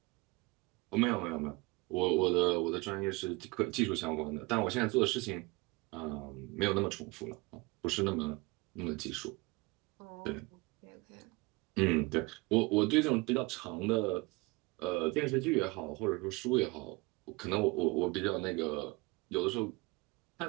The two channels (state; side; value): quieter; left; 24.8 dB